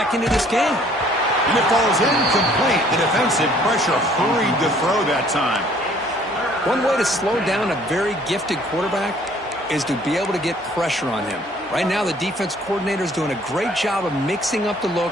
into this game. And it falls incomplete. The defensive pressure hurried to throw that time. One way to slow down a very gifted quarterback is to be able to get pressure on him. Right now, the defense coordinator is doing a great job of mixing up the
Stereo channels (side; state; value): both; normal; correlation 0.58